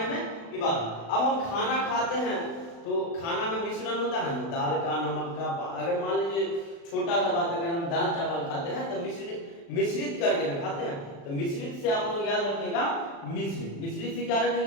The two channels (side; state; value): right; late; 36 ms